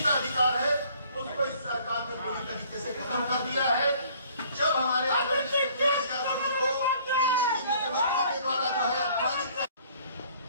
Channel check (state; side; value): inverted; both; correlation -0.57